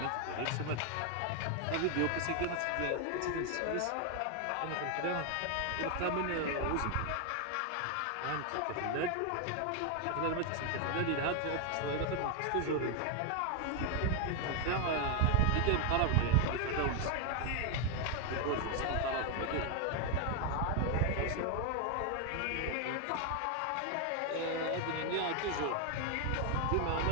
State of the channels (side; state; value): both; different; correlation 0.00